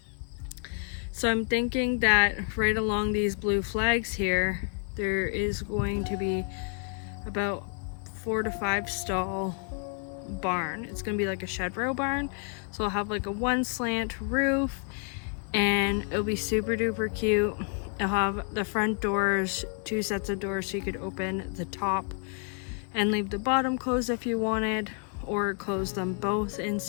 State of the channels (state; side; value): quieter; right; 38.0 dB